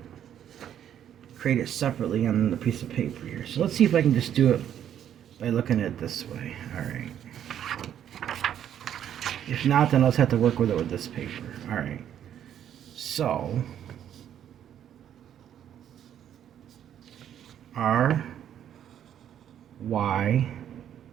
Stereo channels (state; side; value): quieter; left; 10.0 dB